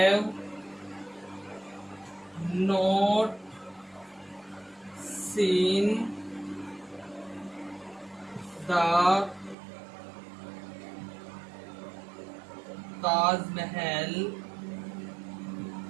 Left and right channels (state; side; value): drops out; left; at 9.6 s